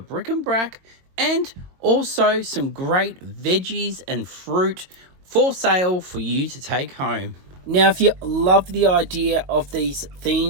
bric-a-brac and also some great veggies and fruit for sale for you to take home. Now, if you love the idea of these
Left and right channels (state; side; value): late; left; 22 ms